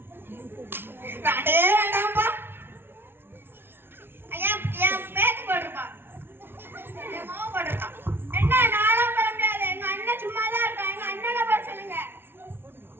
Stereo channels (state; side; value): late; left; 0.11 ms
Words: வேண்டே வேண்டாம்ப்பா. ஐயா என் பேத்து போட்டிருப்பா. என் மாவு போட்டிருப்பான். என்ன நானும் போட முடியாது. எங்க அண்ணன் சும்மா தான் இருக்கான். எங்க அண்ணனை போட சொல்லுங்க.